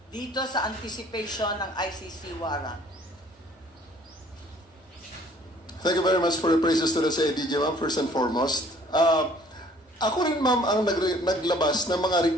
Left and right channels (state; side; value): normal; both; correlation 0.56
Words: dito sa anticipation ng ICC warrant? Thank you very much for the praises to the CIDG, ma'am, first and foremost. Ako rin, ma'am, ang naglabas ng mga